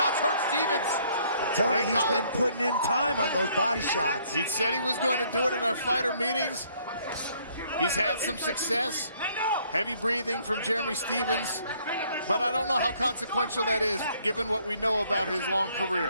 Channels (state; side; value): inverted; both; correlation -0.65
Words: hurt Stephens. I'm telling you, he's Collar. been putting in time on those body shots. He said he was going to do it in our fighter meetings. He's had some success. Heavy breathing from Jeremy Stephens. But I don't know how consequential that is, given what we know about his long